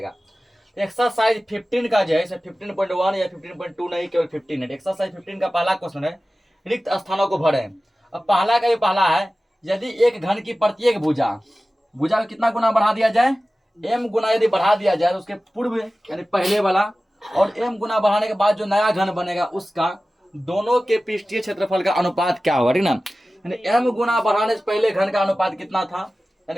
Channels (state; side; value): normal; both; correlation 0.96